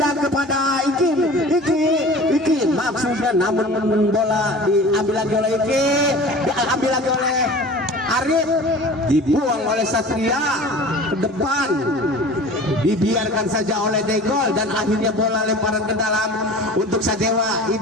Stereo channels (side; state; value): both; normal; correlation 0.40